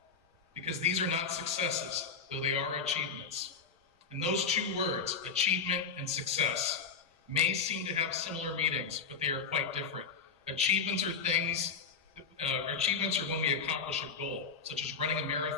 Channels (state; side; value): quieter; right; 5.5 dB